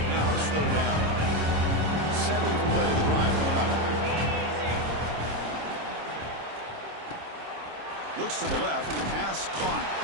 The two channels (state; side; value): late; left; 26 ms